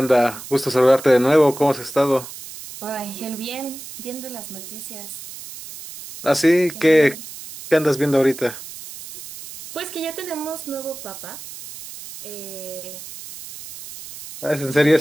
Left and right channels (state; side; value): noise; right; hiss, 13 dB below the sound